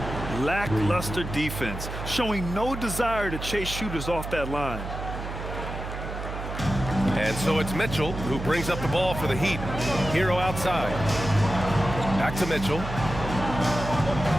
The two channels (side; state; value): right; noise; hum, 7 dB below the sound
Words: Lackluster defense, showing no desire to chase shooters off that line. And so it's Mitchell who brings up the ball for the Heat. Hero outside. Back to Mitchell.